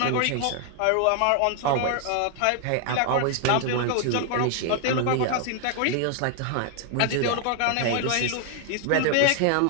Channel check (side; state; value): both; different; correlation 0.00